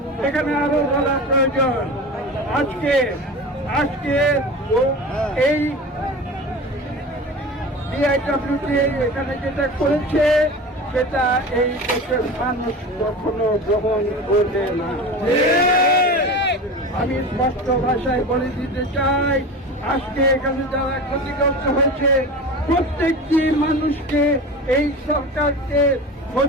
এখানে আরো বলা প্রয়োজন, আজকে এই বিআইডব্লিউডি এখানে যেটা করেছে সেটা এই দেশের মানুষ কখনো গ্রহণ করবে না। আমি স্পষ্ট ভাষায় বলে দিতে চাই, আজকে এখানে যারা ক্ষতিগ্রস্ত হয়েছে প্রত্যেকটি মানুষকে এই সরকারকে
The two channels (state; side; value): normal; both; correlation 0.31